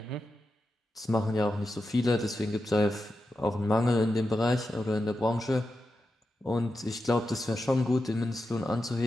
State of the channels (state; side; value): normal; both; correlation 0.89